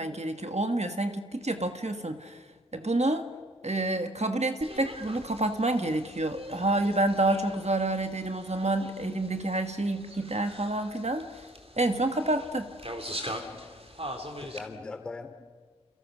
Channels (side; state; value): both; normal; correlation 0.56